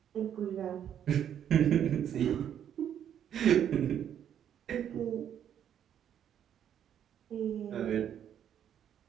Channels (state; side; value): quieter; left; 9.5 dB